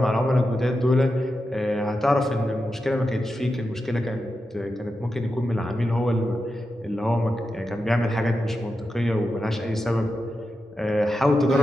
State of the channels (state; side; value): normal; both; correlation 0.89